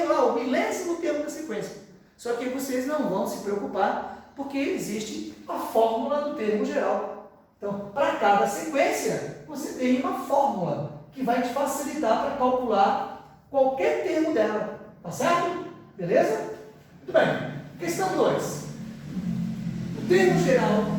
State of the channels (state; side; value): identical; both; correlation 1.00